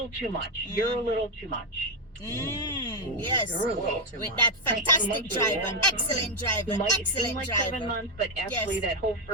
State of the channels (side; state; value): both; normal; correlation 0.04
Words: too much. You're a little too much. Yes. You're a little too With much. that fantastic months driver. ago. Excellent driver. It might seem Excellent like driver. 7 months, but actually Yes. that whole